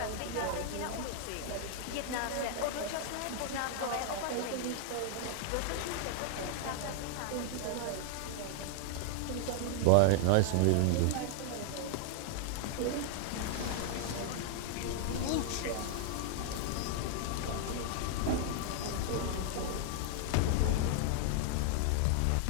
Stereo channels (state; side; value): different; both; correlation 0.00